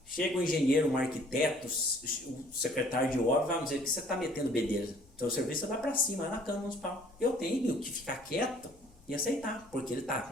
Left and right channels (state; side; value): noise; left; rumble, 26 dB below the sound